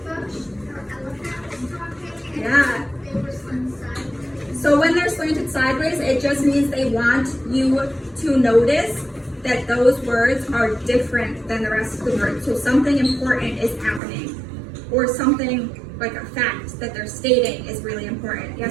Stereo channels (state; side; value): drops out; left; at 14.0 s